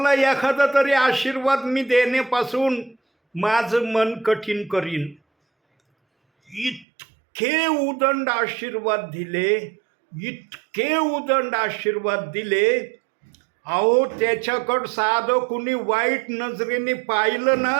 एखादा तरी आशीर्वाद मी देण्यापासून माझं मन कठीण करीन. इतके उदंड आशीर्वाद दिले, इतके उदंड आशीर्वाद दिले. अहो, त्याच्याकडं साधं कुणी वाईट नजरेने पाहिलं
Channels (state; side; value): drops out; left; at 6.9 s